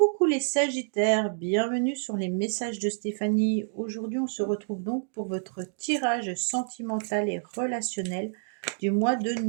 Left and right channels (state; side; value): silent; left; digital silence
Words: les Sagittaires, bienvenue sur les messages de Stéphanie. Aujourd'hui, on se retrouve donc pour votre tirage sentimental et relationnel du mois de